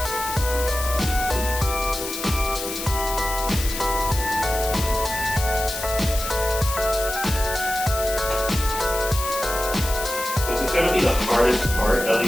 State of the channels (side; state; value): left; noise; hiss, 7 dB below the sound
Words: This is going to be the hardest part, at